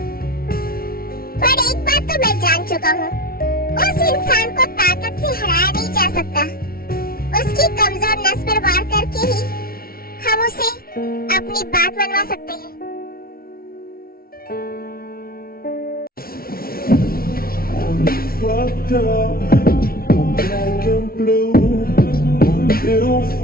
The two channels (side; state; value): right; late; 0.43 ms